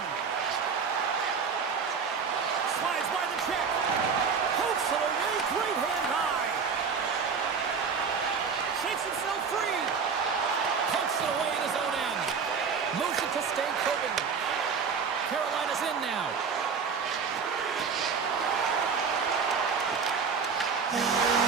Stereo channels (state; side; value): quieter; left; 5.8 dB